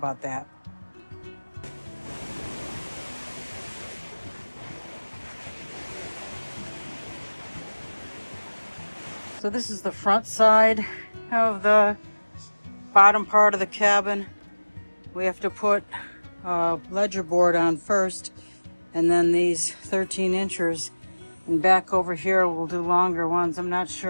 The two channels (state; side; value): inverted; both; correlation -1.00